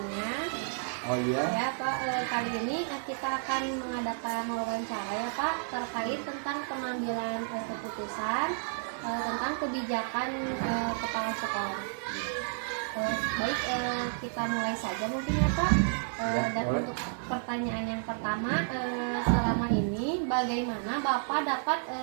Oh iya, Ya Pak, kali ini kita akan mengadakan wawancara ya Pak terkait tentang pengambilan keputusan tentang kebijakan kepala sekolah. Baik, kita mulai saja mungkin ya Pak. Dan boleh. untuk pertanyaan yang pertama, selama ini bagaimana Bapak dapat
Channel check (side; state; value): left; silent; 57 dB below the other